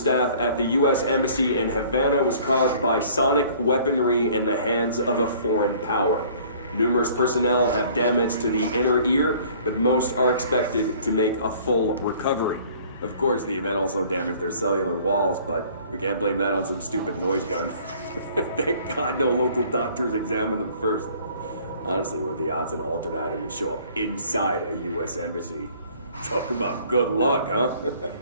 at the U.S. Embassy in Havana was caused by sonic weaponry in the hands of a foreign power. Numerous personnel have damage to the inner ear, but most are expected to make a full recovery. Of course, the event also damaged their cellular walls, but we can't blame that on some stupid noise gun. Thank God no local doctors examined them first. Honestly, what are the odds an altered item would show up inside a U.S. embassy? Talk about good luck, huh?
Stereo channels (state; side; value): inverted; both; correlation -0.53